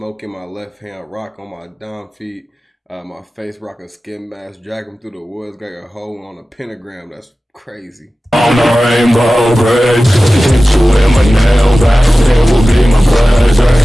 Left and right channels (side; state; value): both; normal; correlation 0.96